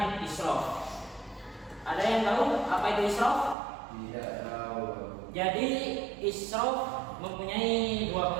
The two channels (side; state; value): left; drops out; at 3.6 s